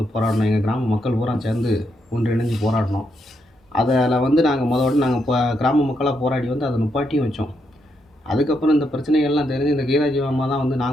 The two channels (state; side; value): normal; both; correlation 0.80